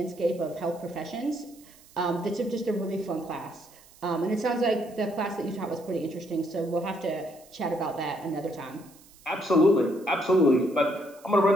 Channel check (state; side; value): noise; right; hiss, 25 dB below the sound